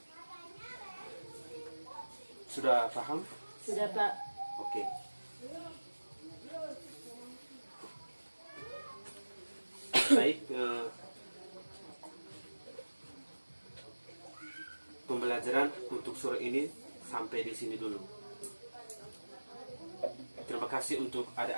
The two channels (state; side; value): inverted; both; correlation -1.00